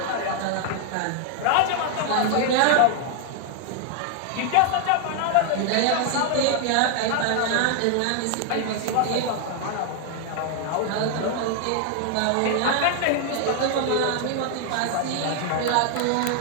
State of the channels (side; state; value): both; different; correlation 0.00